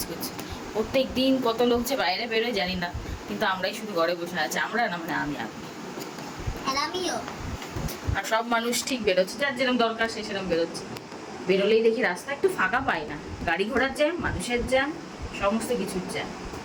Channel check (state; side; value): identical; both; correlation 1.00